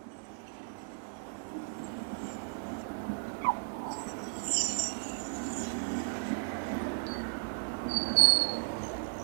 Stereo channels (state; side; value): silent; left; digital silence